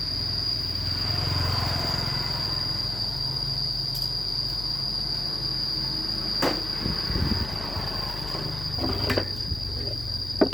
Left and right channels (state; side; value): noise; left; hum, 9 dB below the sound